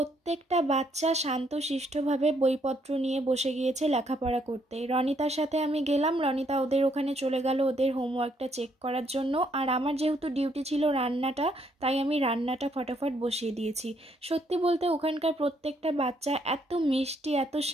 বাচ্চা শান্তশিষ্টভাবে বইপত্র নিয়ে বসে গিয়েছে লেখাপড়া করতে। রনিতার সাথে আমি গেলাম, রনিতা ওদের ওখানে চলে গেল ওদের হোমওয়ার্কটা চেক করার জন্য, আর আমার যেহেতু ডিউটি ছিল রান্নাটা, তাই আমি রান্নাটা ফটাফট বসিয়ে দিয়েছি। সত্যি বলতে ওখানকার প্রত্যেকটা বাচ্চা এত মিষ্টি, এত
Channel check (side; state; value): both; normal; correlation 0.71